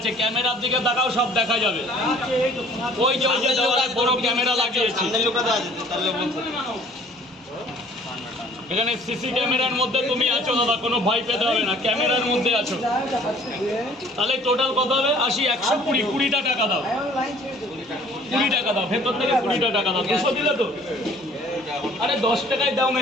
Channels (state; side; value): normal; both; correlation 0.54